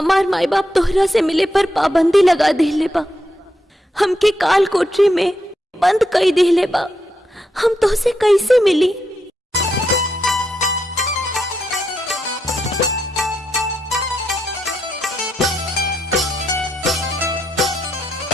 माई बाप तोहरा से मिले पर पाबंदी लगा देले बा, हमके काल कोठरी में बंद कई देले बा, हम तोहसे कैसे मिली।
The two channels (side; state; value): both; normal; correlation 0.82